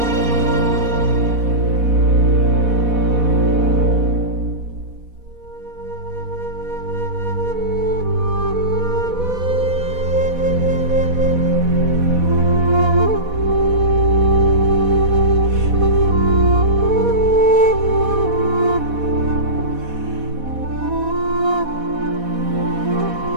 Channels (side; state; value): left; late; 4.1 ms